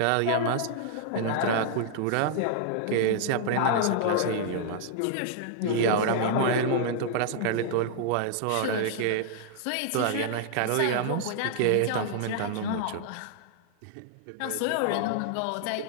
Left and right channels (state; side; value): different; both; correlation -0.01